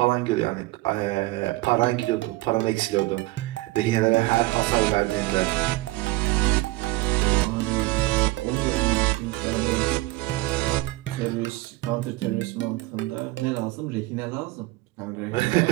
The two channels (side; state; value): left; quieter; 20.4 dB